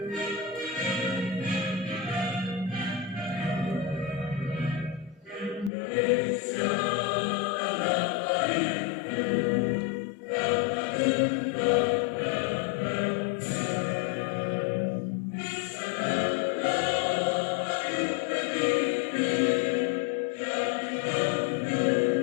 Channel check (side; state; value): right; drops out; at 5.7 s